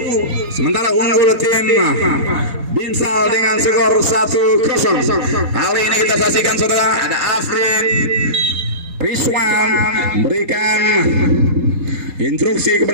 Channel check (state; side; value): late; left; 4.2 ms